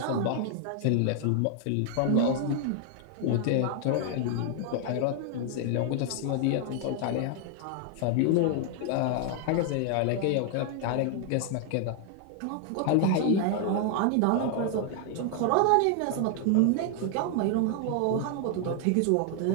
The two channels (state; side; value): different; both; correlation 0.00